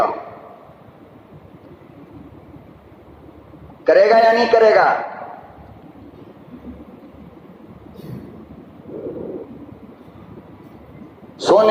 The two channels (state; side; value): identical; both; correlation 1.00